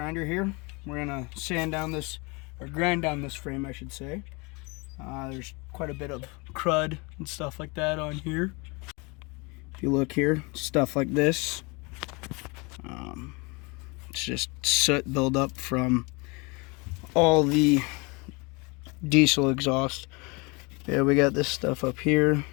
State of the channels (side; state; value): right; quieter; 28.3 dB